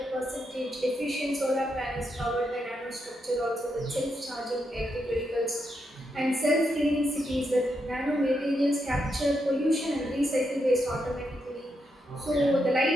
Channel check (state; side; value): normal; both; correlation 0.82